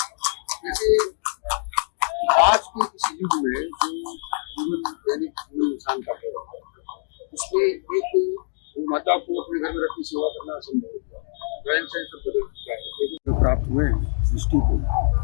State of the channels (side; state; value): right; silent; digital silence